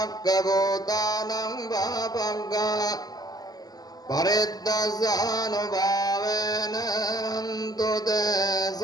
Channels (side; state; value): right; late; 0.19 ms